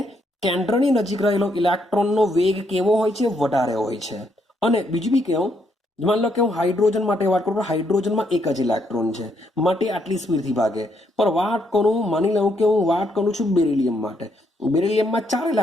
કેન્દ્રની નજીક રહેલો ઇલેક્ટ્રોનનો વેગ કેવો હોય છે? વધારે હોય છે. અને બીજું બી કેવું, માન લો કે હું હાઇડ્રોજન માટે વાત કરું તો હાઇડ્રોજનમાં એક જ ઇલેક્ટ્રોન છે માટે આટલી સ્પીડથી ભાગે. પણ માની લઉં કે હું વાત કરું છું બેરિલિયમ માટે, બેરિલિયમમાં 4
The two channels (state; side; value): normal; both; correlation 0.75